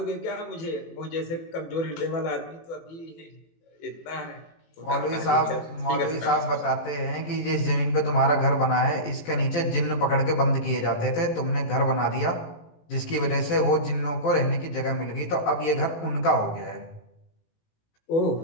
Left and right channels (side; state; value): right; late; 18 ms